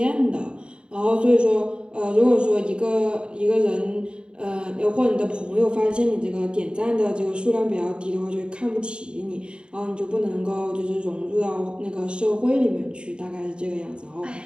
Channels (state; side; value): late; left; 0.052 ms